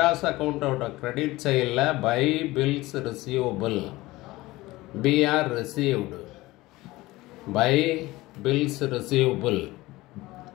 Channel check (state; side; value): quieter; right; 19.3 dB